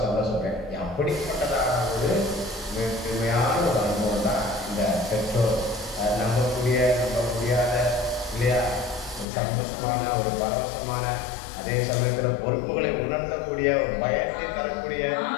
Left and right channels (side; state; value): right; drops out; at 9.2 s